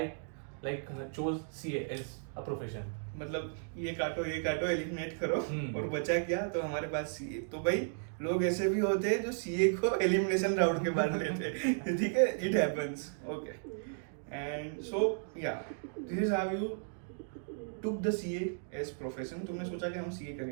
like chose CA as a profession. मतलब ये काटो एलिमिनेट करो और बचा क्या तो हमारे पास सीए. तो भाई लोग ऐसे भी होते हैं जो सीए को एलिमिनेशन राउंड के बाद लेते हैं. ठीक है, it happens. Okay. And so yeah this is how you took the CA as profession. तुमने सोचा कि हम सीए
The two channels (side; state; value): left; silent; digital silence